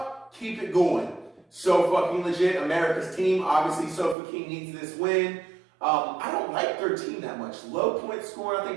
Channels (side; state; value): left; drops out; at 4.2 s